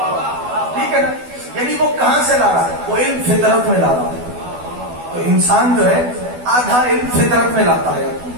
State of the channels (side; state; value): left; late; 12 ms